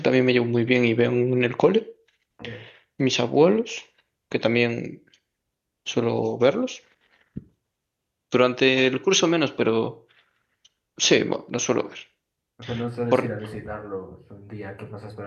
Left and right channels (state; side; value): identical; both; correlation 1.00